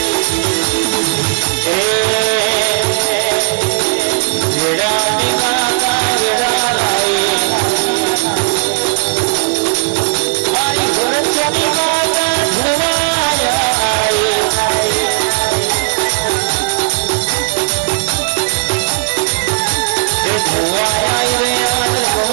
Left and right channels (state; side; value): silent; left; 58 dB below the other